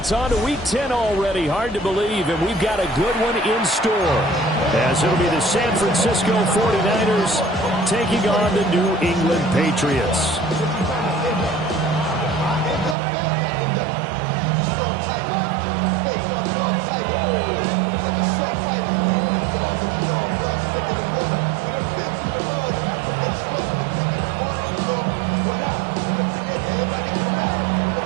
on to Week 10 already. Hard to believe, and we've got a good one in store, as it'll be the San Francisco 49ers taking on the New England Patriots.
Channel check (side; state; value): left; drops out; at 13.0 s